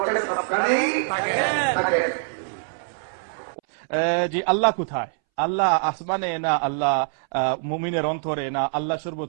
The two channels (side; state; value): left; silent; 63 dB below the other